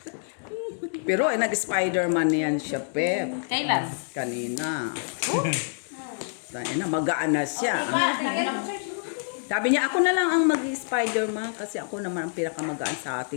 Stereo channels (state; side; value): silent; right; digital silence